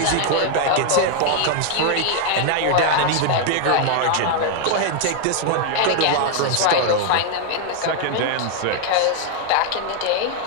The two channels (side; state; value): both; different; correlation 0.00